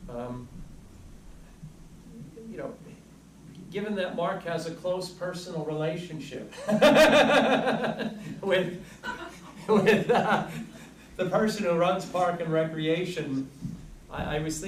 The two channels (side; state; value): both; identical; correlation 1.00